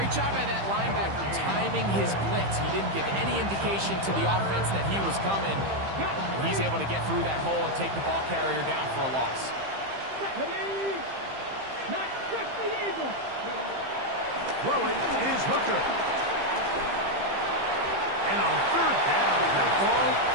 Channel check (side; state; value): left; late; 15 ms